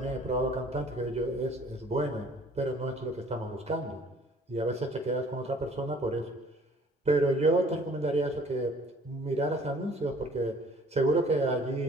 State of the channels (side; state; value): both; normal; correlation 0.55